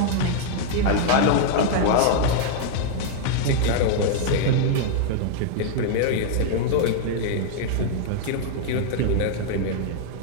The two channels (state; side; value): different; both; correlation -0.01